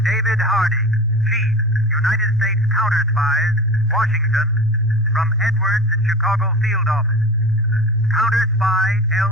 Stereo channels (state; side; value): normal; both; correlation 0.33